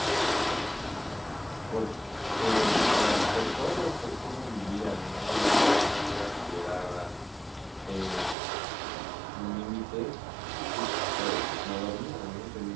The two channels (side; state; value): left; drops out; at 8.3 s